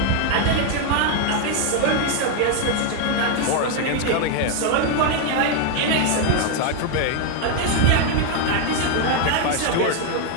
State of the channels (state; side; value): different; both; correlation 0.01